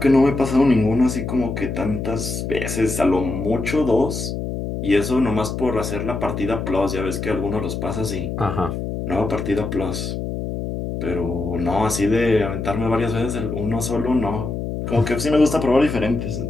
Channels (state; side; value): noise; left; hum, 4 dB below the sound